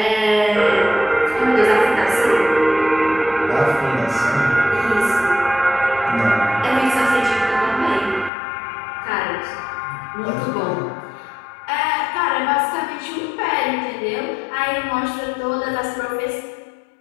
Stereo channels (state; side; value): drops out; right; at 8.3 s